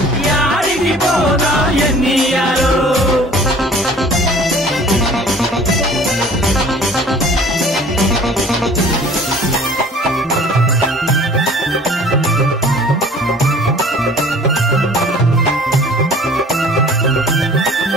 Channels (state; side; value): normal; both; correlation 0.48